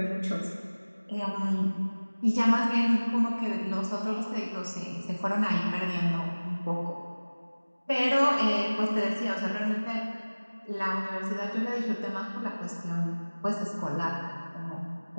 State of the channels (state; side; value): inverted; both; correlation -1.00